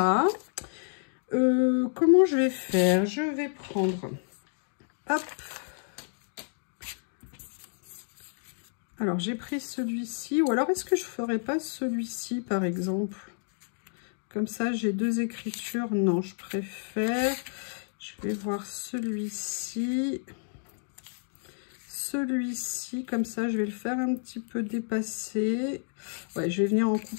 comment je vais faire? Je vais prendre, hop. Alors, j'ai pris celui-ci. Ou alors, est-ce que je ne ferais pas celui-ci, par exemple? Comme ça, j'ai deux écritures. Non, je préfère. Je vais voir celui-ci. Celui-ci, comme ça, je vais le faire un petit peu dépasser. Ouais, je vais venir en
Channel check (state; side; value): silent; right; digital silence